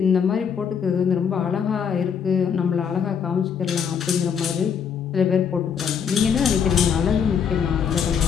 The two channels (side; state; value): right; quieter; 7.2 dB